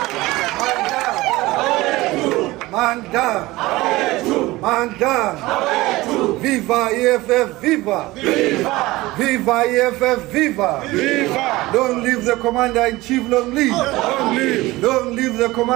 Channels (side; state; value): left; quieter; 19.4 dB